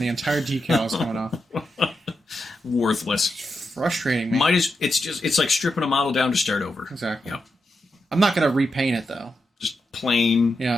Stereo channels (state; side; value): normal; both; correlation 0.86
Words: the entire decal is coming off. Worthless. Frustrating, man. It's like stripping a model down to start over. Exactly. Yep. I'm not going to repaint it though. Just plain.